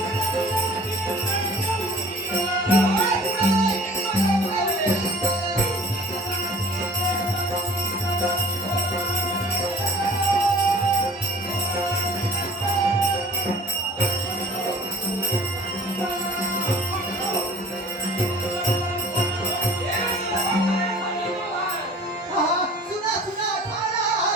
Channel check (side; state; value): both; normal; correlation 0.47